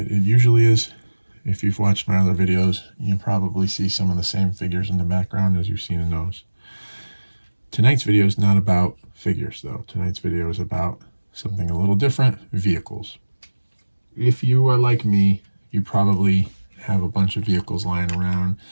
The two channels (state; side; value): inverted; both; correlation -1.00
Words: It usually is. If you've watched my other videos, you probably see some of the same figures in the background as you've seen in those. Tonight's video is not about figures, though. Tonight's video is about something a little different: vehicles. If you are like me, you probably have a bunch of vehicles lying around.